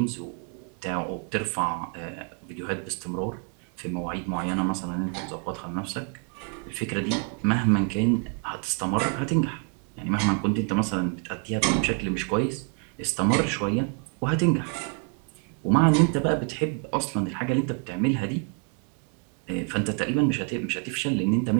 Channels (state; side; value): quieter; left; 38.1 dB